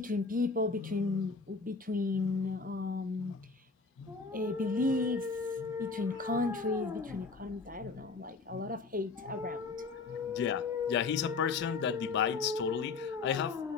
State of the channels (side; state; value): right; quieter; 4.3 dB